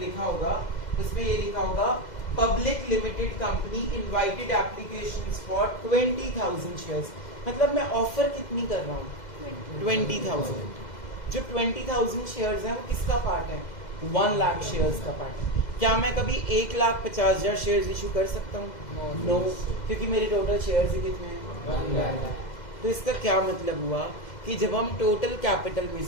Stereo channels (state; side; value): late; right; 2.0 ms